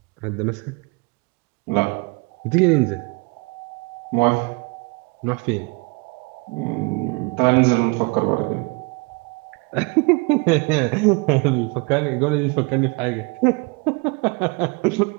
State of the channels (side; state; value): left; quieter; 29.5 dB